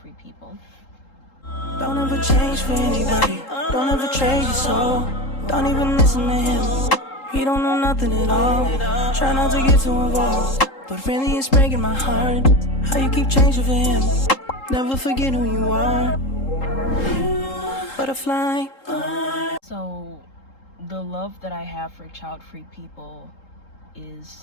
people. Don't ever change for anybody. Don't ever trade your soul. Don't even listen to him. He don't know nothing at all. Try not to get too involved, but really it's breaking my heart how you keep changing for him. Never forget who you are. Butterfly. So the love that I have for child-free people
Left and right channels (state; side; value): late; right; 3.8 ms